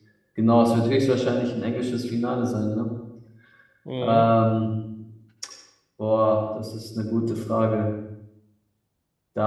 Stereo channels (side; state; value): both; identical; correlation 1.00